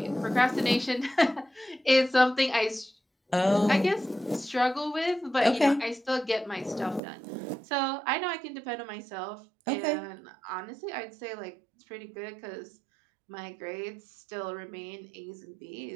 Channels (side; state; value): left; drops out; at 7.0 s